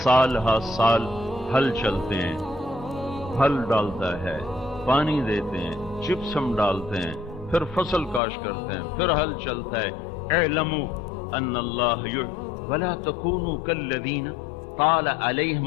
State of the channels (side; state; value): right; drops out; at 8.2 s